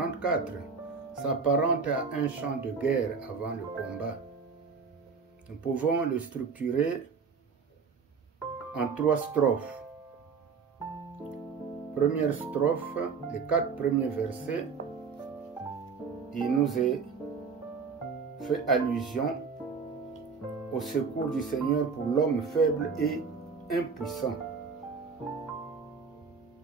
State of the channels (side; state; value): left; quieter; 5.3 dB